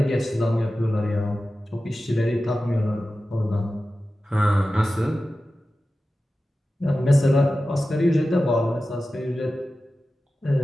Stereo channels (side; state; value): both; normal; correlation 0.94